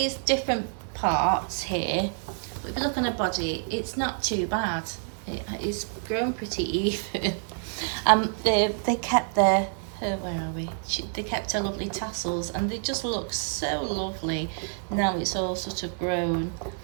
different parts here, but if you look on her body, it's not too bad. It's grown pretty even. They kept their where are we? They kept her lovely tassels, and they just look so lovely. Now it's all sort of grown.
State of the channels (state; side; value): silent; left; 60 dB below the other